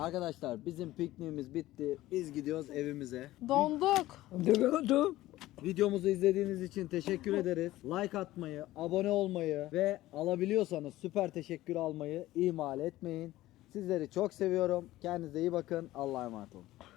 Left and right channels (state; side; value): quieter; right; 16.2 dB